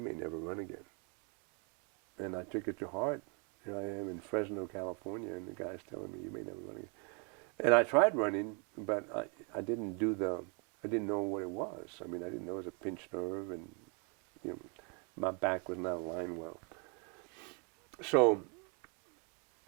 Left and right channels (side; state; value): left; quieter; 36.4 dB